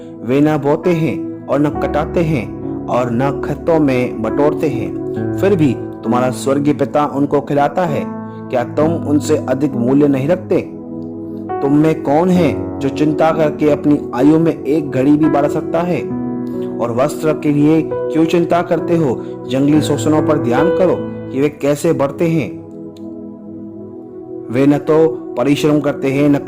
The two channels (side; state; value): both; identical; correlation 1.00